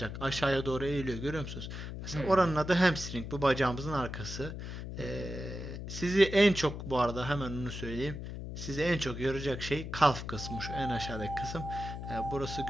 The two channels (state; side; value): noise; left; hum, 7 dB below the sound